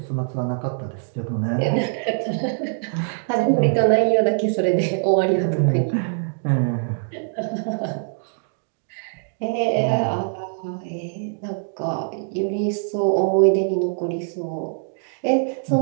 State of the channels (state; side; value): silent; left; digital silence